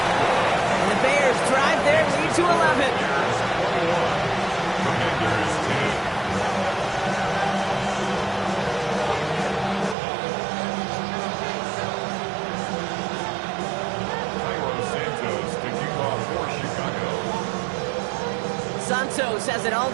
the Bears drive their lead to 11. Santos has it all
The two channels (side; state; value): left; drops out; at 10.0 s